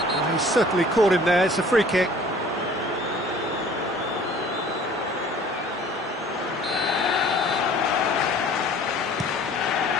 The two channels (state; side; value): normal; both; correlation 0.50